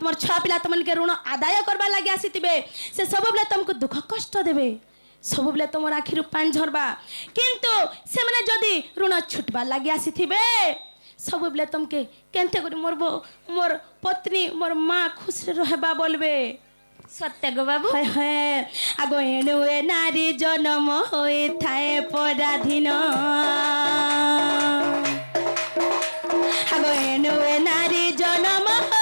ছুয়া পিলা তোমাকে ঋণ আদায় করবার লাগি আসিতিবে সে সবুলে তোমাকে দুঃখ কষ্ট দেবে সবুলে তোমার আখিরু পানি ঝরবা কিন্তু সেমানে যদি ঋণ ছুটবার লাগি আসিতিবে সবুলে তোমাকে কেনতে করি মোর পত্নী মোর মা খুশি রহবা বলবে सत्य गो बाबू হয় হয় আগো এনুয়ে নারী জন্ম হয়ে থায়ে পরাধীন আগো এনুয়ে নারী জন্ম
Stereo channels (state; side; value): inverted; both; correlation -1.00